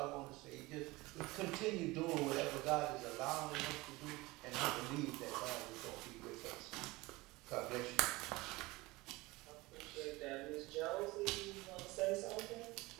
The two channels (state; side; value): quieter; left; 21.5 dB